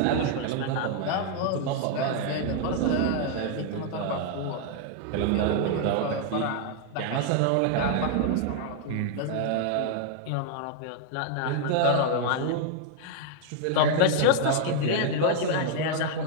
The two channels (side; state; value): both; different; correlation 0.00